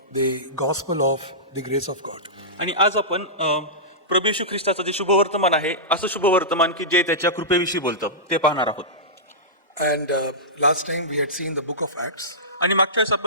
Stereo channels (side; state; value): both; normal; correlation -0.17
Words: the gospel of the grace of God. आणि आज आपण प्रभू येशू ख्रिस्ताचं जे शुभवर्तमान आहे असं शुभवर्तमान की जे त्याच्या कृपेविषयी बोलतं ते पाहणार आहोत. And last time we had seen the book of Acts, आणि मागच्या वेळेस